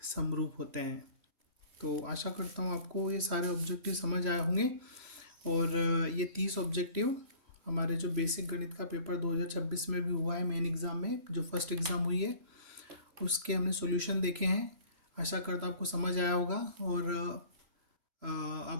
समरूप होते हैं। तो आशा करता हूँ आपको ये सारे ऑब्जेक्टिव समझ आए होंगे। और ये 30 ऑब्जेक्टिव हमारे जो बेसिक गणित का पेपर 2026 में भी हुआ है, मेन एग्ज़ाम में जो फर्स्ट एग्ज़ाम हुई है उसके हमने सॉल्यूशन देखे हैं। आशा करता हूँ आपको समझ आया होगा और आप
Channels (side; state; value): left; late; 3.0 ms